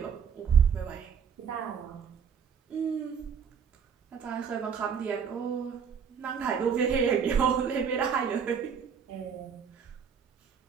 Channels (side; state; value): left; quieter; 6.9 dB